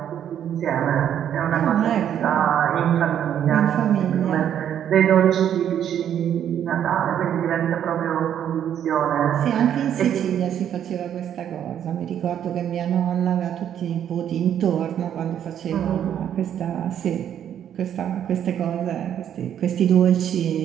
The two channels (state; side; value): quieter; left; 9.7 dB